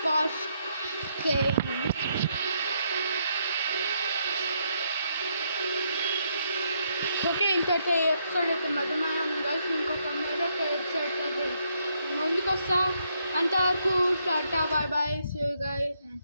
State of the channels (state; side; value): inverted; both; correlation -0.75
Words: Posh ఓకే, ఇంతటి ఎపిసోడ్ అయితే మధ్యమానం కలిసి ఇంకొక మరొక ఎపిసోడ్ అయితే ముందుకు వస్తా. అంతవరకు tata, bye bye, see you guys and